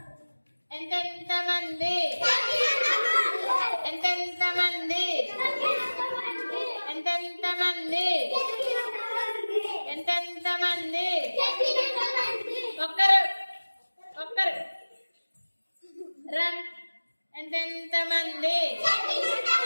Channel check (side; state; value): both; inverted; correlation -1.00